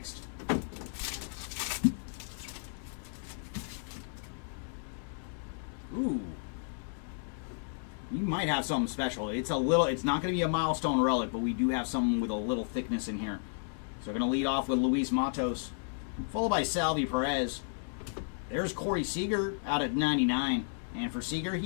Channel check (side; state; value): right; silent; digital silence